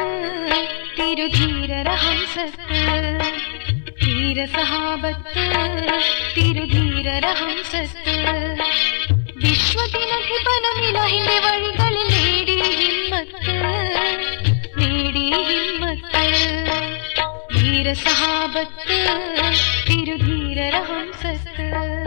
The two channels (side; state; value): right; silent; 62 dB below the other